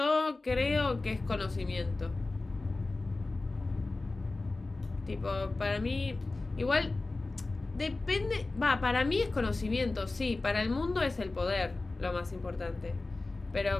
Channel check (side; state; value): right; quieter; 3.3 dB